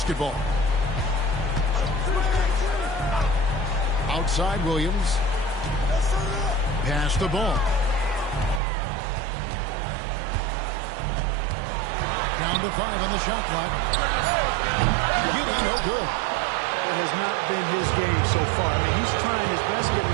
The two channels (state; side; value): drops out; left; at 8.6 s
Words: Outside Williams. Pass the ball. Down to 5 on the shot clock. Giddey, no good. It has not been his game so far. I mean, he's trying his best,